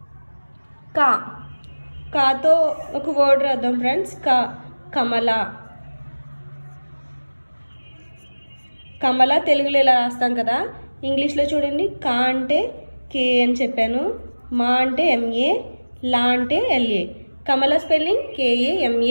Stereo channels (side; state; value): both; inverted; correlation -1.00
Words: కా కాతో ఒక వర్డ్ రాద్దాం ఫ్రెండ్స్. కా కమల. కమల తెలుగులో ఇలా రాస్తాం కదా. ఇంగ్లీష్లో చూడండి. కా అంటే కే అని చెప్పాను. మా అంటే ఎంఏ. లా అంటే ఎల్ఏ. కమల స్పెల్లింగ్